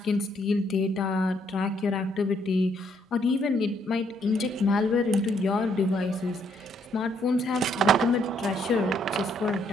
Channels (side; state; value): both; normal; correlation 0.70